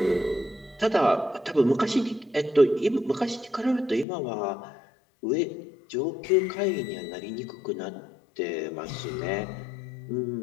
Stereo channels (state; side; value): drops out; right; at 4.0 s